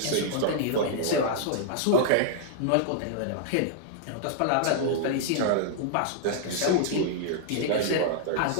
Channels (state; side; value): different; both; correlation -0.01